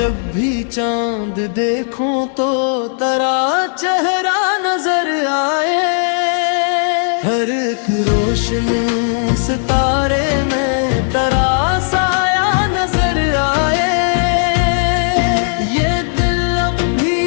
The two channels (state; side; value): silent; right; 68 dB below the other